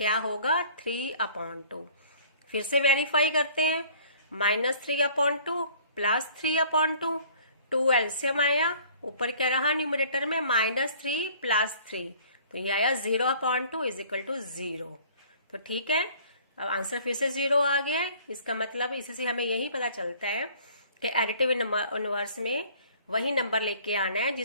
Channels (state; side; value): inverted; both; correlation -0.53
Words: होगा, 3/2। फिर से वेरीफाई करते हैं, -3/2 +3/2, 2 एलसीएम आया, ऊपर क्या रहा न्यूमरेटर में -3 + 3, तो ये आया 0/2 = 0। तो ठीक है, अब आंसर फिर से 0 आ गया है। इसका मतलब इससे हमें यही पता चलता है कि एडिटिव इनवर्स में वही नंबर लेके आना है